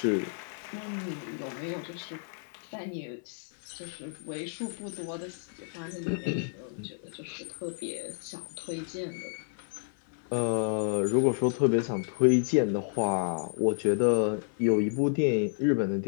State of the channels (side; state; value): right; silent; 57 dB below the other